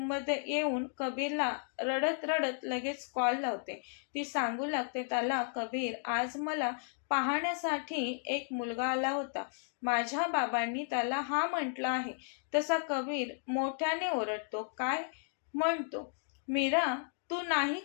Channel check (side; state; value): right; silent; digital silence